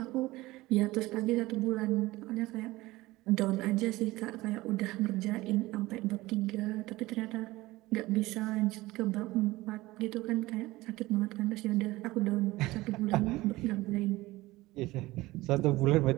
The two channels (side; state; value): left; quieter; 19.2 dB